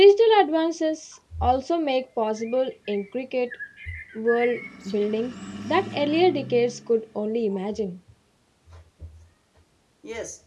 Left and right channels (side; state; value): both; identical; correlation 1.00